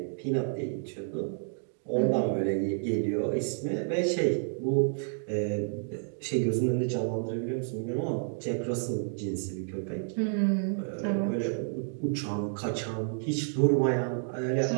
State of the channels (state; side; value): silent; left; digital silence